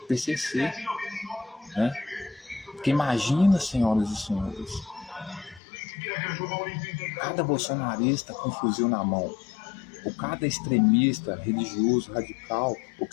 PCC, né? Porque imagina, senhoras e senhores, cada bolsonarista com um fuzil na mão, ou cada extremista religioso, radical, ou que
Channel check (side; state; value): right; drops out; at 5.6 s